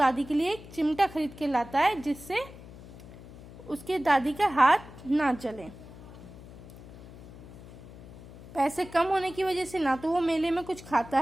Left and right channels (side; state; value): left; noise; hum, 17 dB below the sound